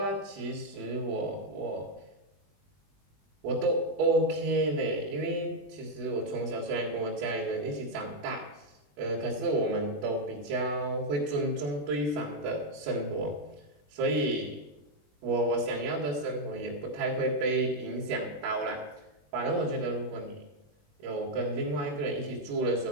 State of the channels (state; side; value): late; left; 20 ms